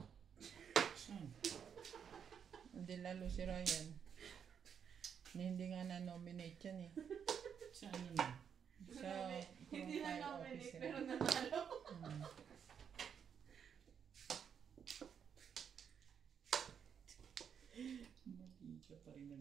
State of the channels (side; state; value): left; quieter; 7.6 dB